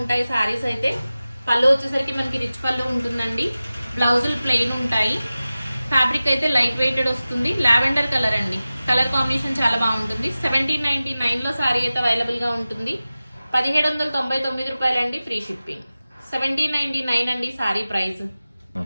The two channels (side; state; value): both; inverted; correlation -0.96